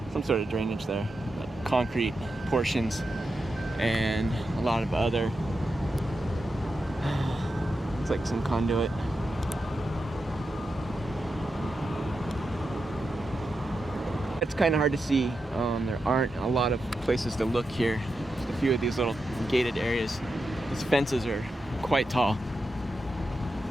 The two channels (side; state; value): both; normal; correlation 0.88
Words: some sort of drainage there, like concrete portions, and a lot of other. Like some conduit. It's kind of hard to see. There aren't a lot of places to look here. Just a few of these little gated areas. These fences are quite tall,